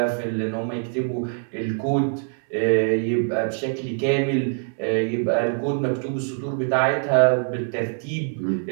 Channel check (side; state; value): left; silent; 63 dB below the other